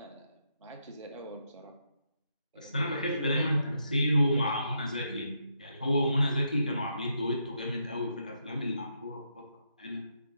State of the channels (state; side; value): inverted; both; correlation -0.79